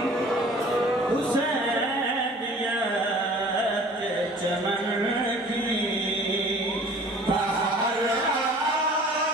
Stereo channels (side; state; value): both; normal; correlation 0.48